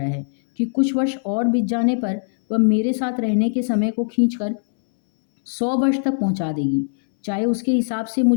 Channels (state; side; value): silent; right; 65 dB below the other